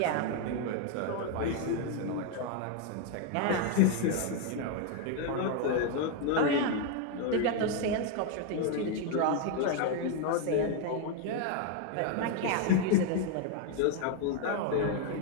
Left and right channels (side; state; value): both; different; correlation 0.01